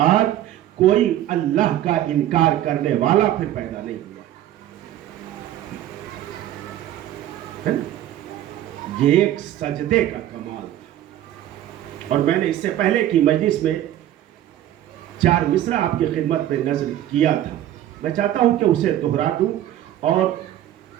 کوئی اللہ کا انکار کرنے والا پھر پیدا نہیں ہوا. یہ ایک سجدے کا کمال تھا. اور میں نے اس سے پہلے کی مجلس میں 4 مصرع آپ کی خدمت میں نظر کیا تھا. میں چاہتا ہوں کہ اسے دہرا دوں اور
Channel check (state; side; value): quieter; left; 12.6 dB